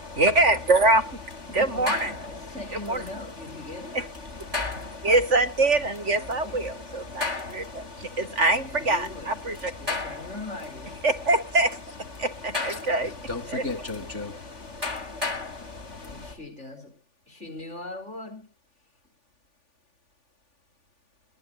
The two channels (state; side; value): late; left; 3.5 ms